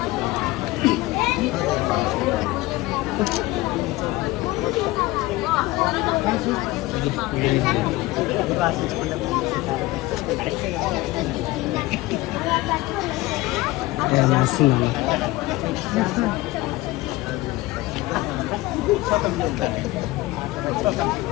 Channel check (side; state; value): right; quieter; 19.1 dB